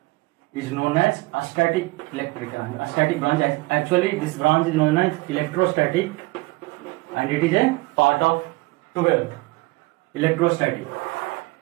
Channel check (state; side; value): quieter; left; 23.3 dB